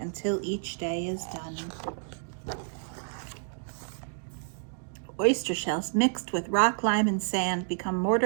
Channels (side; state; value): left; silent; digital silence